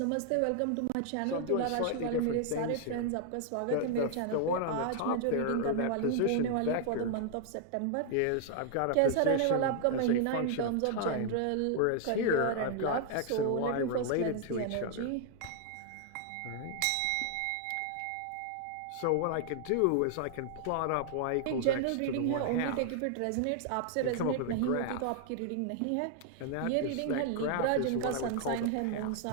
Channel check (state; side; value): different; both; correlation 0.00